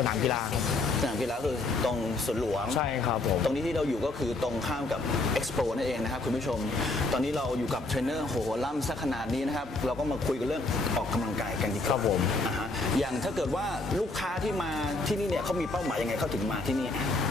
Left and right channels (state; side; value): quieter; right; 3.0 dB